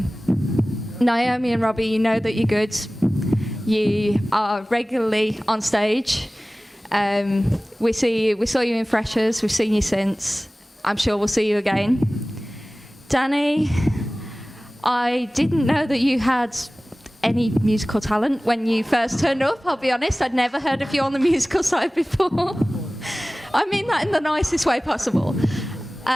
Naomi and Robbie, you know that you're good. You are regularly on stage. We saw you in Freshers. We've seen you since. I'm sure we'll see you again. Danny, I didn't know that you had any musical talent when you first turned up. I'll be honest, I'd never heard of you on the musical side before. I mean that in the nicest way possible.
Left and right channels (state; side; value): normal; both; correlation 0.98